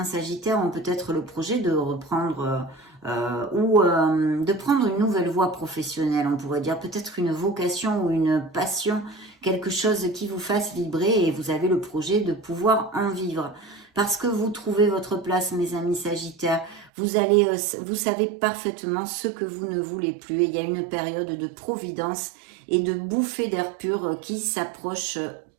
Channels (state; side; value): drops out; left; at 16.9 s